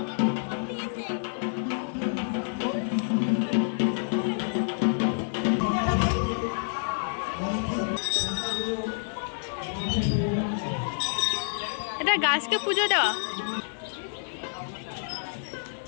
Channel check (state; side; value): silent; right; 59 dB below the other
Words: এটা গাছকে পুজো দেওয়া।